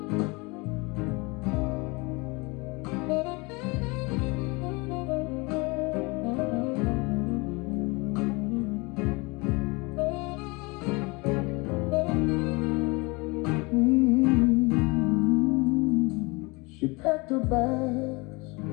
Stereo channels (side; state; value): right; quieter; 26.6 dB